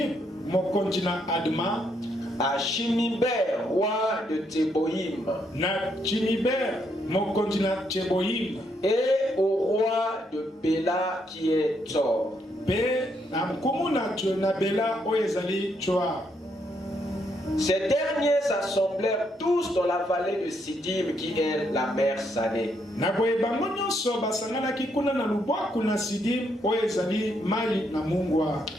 mokonzi na Adma, à Shiniber, roi de Teboïm, na Chiniber mokonzi na Teboïm, et au roi de Béla qui est Tzor. Pe na mkumuna na Béla oyezali Tsoar. Ces derniers s'assemblèrent tous dans la vallée de Sidim qui est la mer Salée. Na boye bango nyonso basanganaki kuna na lubwaku na Sidim oyezali mai na mungwa.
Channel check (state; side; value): normal; both; correlation 0.75